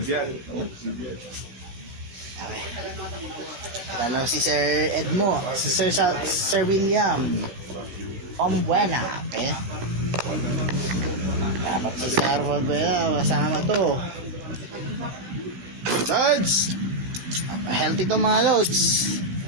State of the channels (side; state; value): left; late; 17 ms